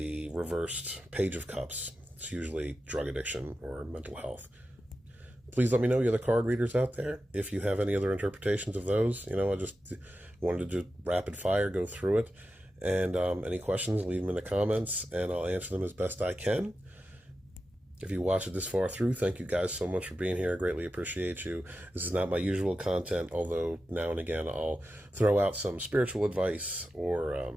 reversed Page of Cups, it's usually drug addiction or mental health. Please let me know, you other card readers out there, if you have any other interpretations of those. You know, I just wanted to do rapid fire, go through it. And any questions, leave them in the comments, and I'll answer them as best I can. If you watched it this far through, thank you guys so much for being here. I greatly appreciate you. This is not my usual content, although now and again I'll throw out some spiritual advice or,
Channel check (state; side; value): normal; both; correlation 0.91